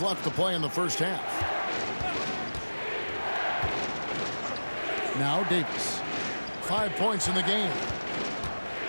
left to play in the first half. Now Davis. 5 points in the game.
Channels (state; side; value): inverted; both; correlation -1.00